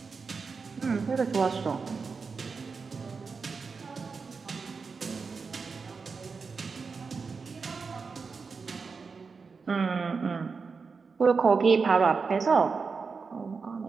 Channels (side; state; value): left; quieter; 4.9 dB